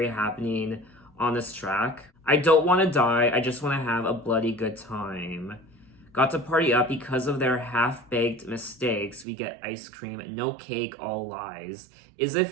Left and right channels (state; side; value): drops out; left; at 9.2 s